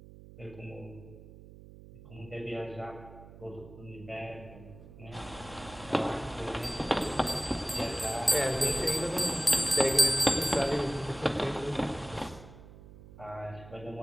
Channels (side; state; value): right; noise; hum, 18 dB below the sound